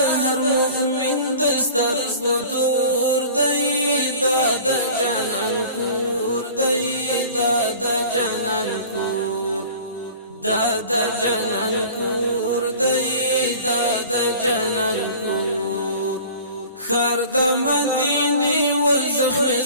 هر مؤمن د سترګو تور دی دا د جنان کور دی دا د جنان کور دا د جنان کور دی دا د جنان کور خر د مدینه و زخم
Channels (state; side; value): inverted; both; correlation -0.43